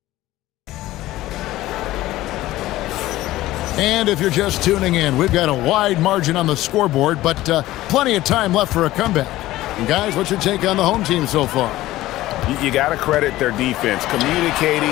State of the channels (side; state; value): right; quieter; 16.3 dB